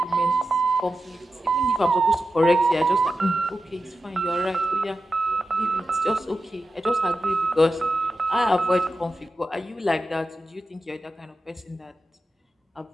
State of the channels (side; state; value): both; normal; correlation 0.91